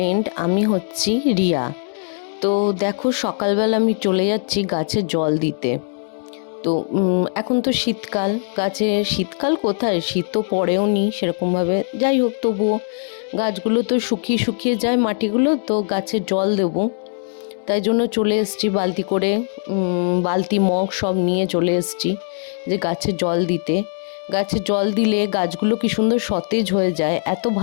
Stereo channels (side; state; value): right; silent; digital silence